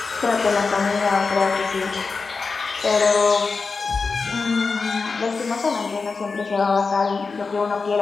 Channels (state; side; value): quieter; right; 4.5 dB